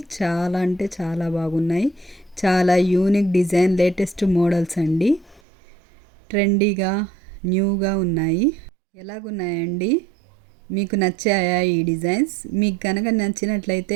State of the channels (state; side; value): drops out; left; at 5.4 s